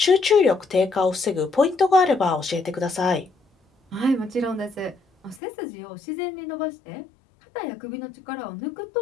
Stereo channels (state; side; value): drops out; right; at 5.4 s